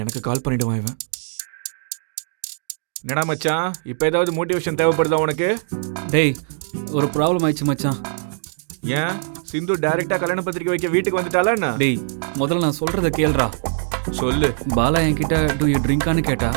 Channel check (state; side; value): silent; left; digital silence